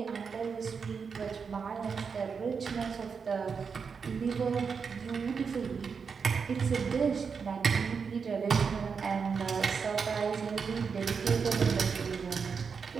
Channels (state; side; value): quieter; left; 5.8 dB